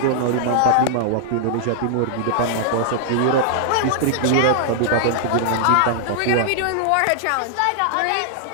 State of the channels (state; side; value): different; both; correlation -0.01